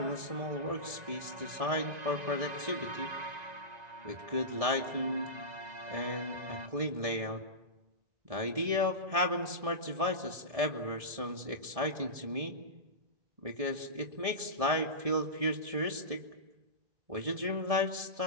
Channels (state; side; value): late; left; 1.7 ms